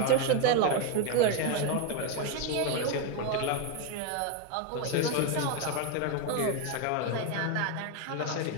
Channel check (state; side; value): different; both; correlation 0.02